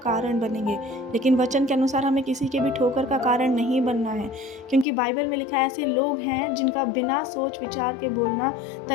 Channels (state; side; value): drops out; right; at 4.9 s